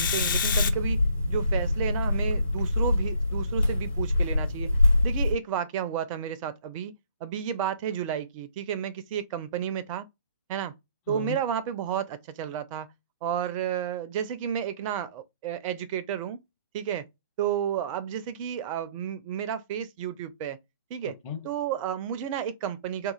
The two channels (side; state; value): both; inverted; correlation -0.61